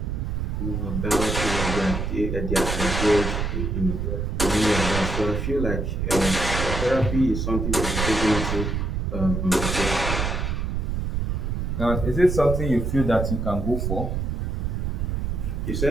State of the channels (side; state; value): right; noise; rumble, 1 dB below the sound